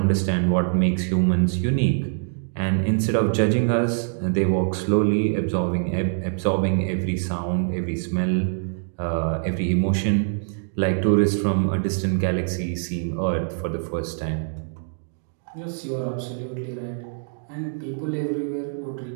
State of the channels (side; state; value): left; silent; digital silence